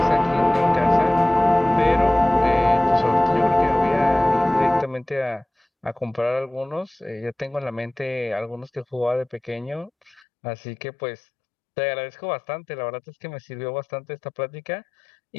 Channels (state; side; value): drops out; right; at 10.2 s